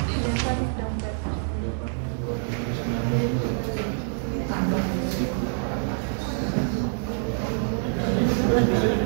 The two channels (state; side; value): silent; left; 58 dB below the other